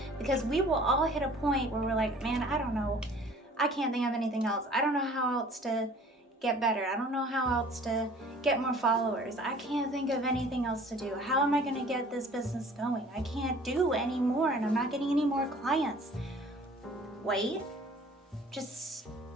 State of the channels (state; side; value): normal; both; correlation 0.50